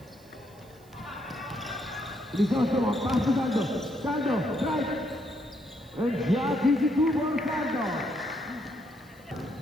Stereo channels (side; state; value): right; noise; hiss, 28 dB below the sound